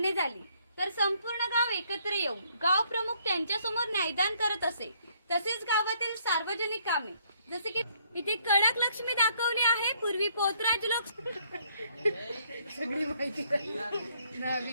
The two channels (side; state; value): both; inverted; correlation -0.67